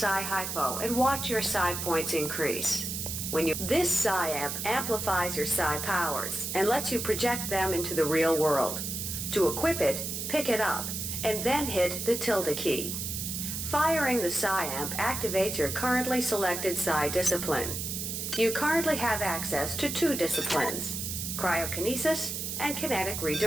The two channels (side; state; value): right; noise; hiss, 4 dB below the sound